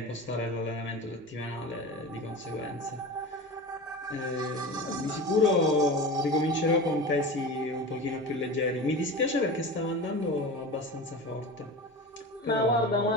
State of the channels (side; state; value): both; normal; correlation 0.30